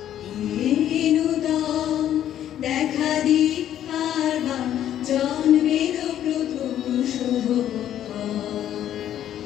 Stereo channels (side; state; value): right; quieter; 11.1 dB